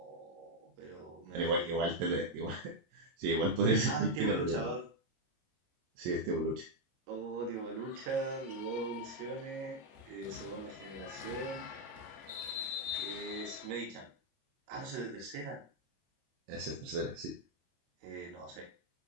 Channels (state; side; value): late; left; 22 ms